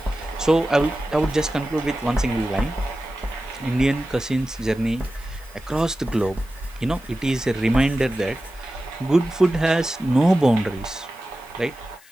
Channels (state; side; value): noise; left; hiss, 25 dB below the sound